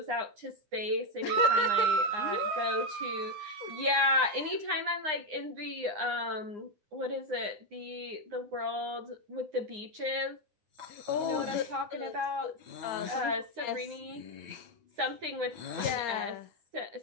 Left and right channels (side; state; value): left; late; 9.7 ms